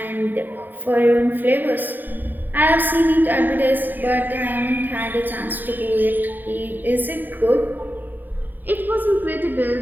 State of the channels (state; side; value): late; left; 0.090 ms